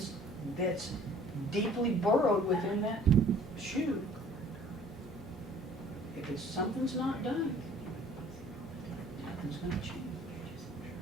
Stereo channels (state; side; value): normal; both; correlation 0.53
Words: that's deeply burrowed within that shoe, if something's not done, nothing's gonna change.